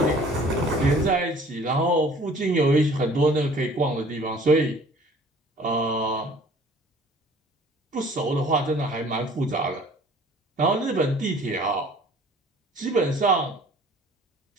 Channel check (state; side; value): normal; both; correlation 0.52